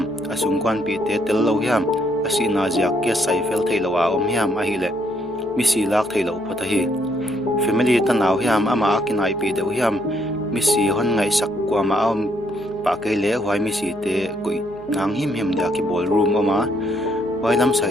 asung kwan pi te tel lo hiam asi na jak ke sai fel thei lo wa om hiam a hi le mi si lak thei lo phata hi family ta naw hiam ama akinai pi de hiam mi si hon ngai sak kwa ma om pa ke le hwai mi si te koi nang him him da ki ballroom oma wai lam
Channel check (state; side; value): noise; left; hum, 26 dB below the sound